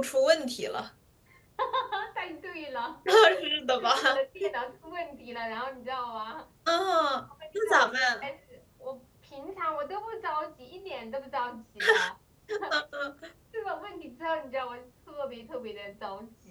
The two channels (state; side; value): identical; both; correlation 1.00